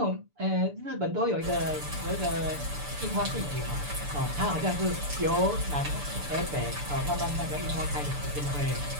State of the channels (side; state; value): left; late; 6.8 ms